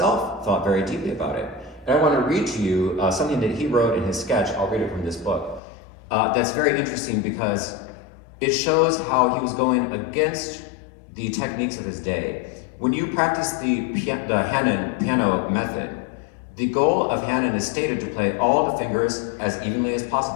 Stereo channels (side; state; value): right; drops out; at 5.6 s